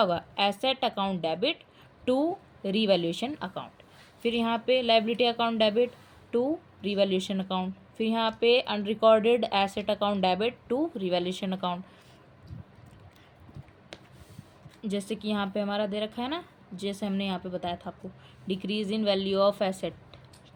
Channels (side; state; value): both; identical; correlation 1.00